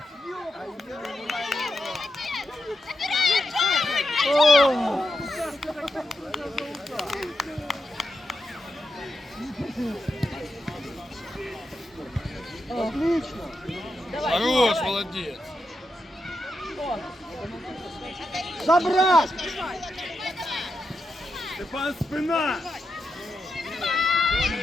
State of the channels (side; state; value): both; normal; correlation 0.86